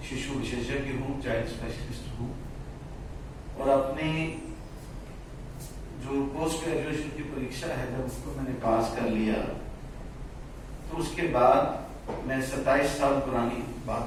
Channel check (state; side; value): identical; both; correlation 1.00